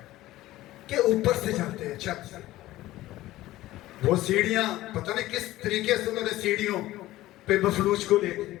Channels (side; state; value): right; quieter; 16.2 dB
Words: कि ऊपर से जाते हैं, छत से, वो सीढ़ियां पता नहीं किस तरीके से उन्होंने सीढ़ियों पे मफलूज को